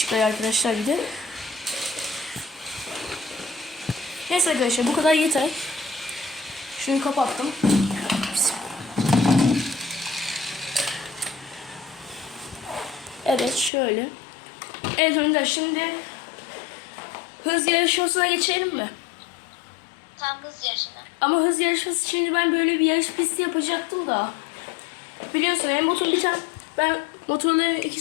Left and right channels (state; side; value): drops out; right; at 13.7 s